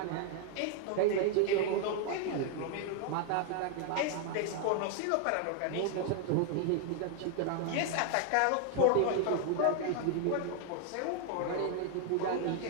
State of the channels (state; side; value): different; both; correlation 0.00